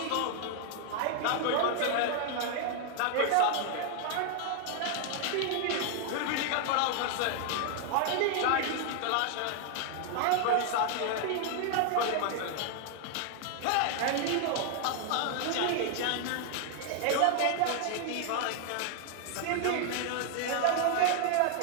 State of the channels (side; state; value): both; different; correlation 0.00